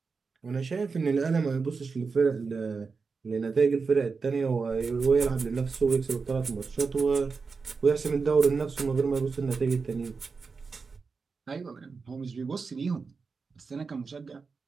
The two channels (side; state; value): left; quieter; 4.8 dB